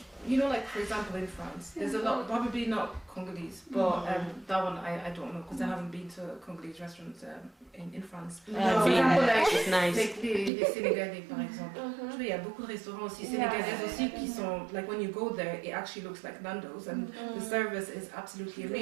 you know, like for example in France, there's a lot, probably not Congolese, but that one I don't know because I haven't been to Congolese restaurants in France. For example, like les Sénégalais par exemple. Tu vois, il y a beaucoup de restaurants aussi sénégalais aussi qui sont like when you go there, it actually looks like Nando's and the service is absolutely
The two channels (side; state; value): left; drops out; at 10.5 s